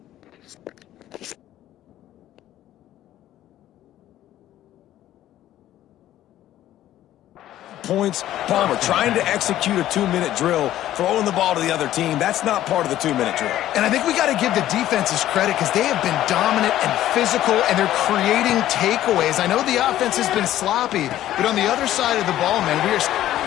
Points. Palmer trying to execute a 2-minute drill, throwing the ball to the other team. That's not part of the 2-minute drill. And I think we got to give the defenses credit because they have been dominant and physical, and they're creating takeaways. I know the offense has been sloppy, but on the other side of the ball, man, we are...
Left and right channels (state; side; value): quieter; right; 13.2 dB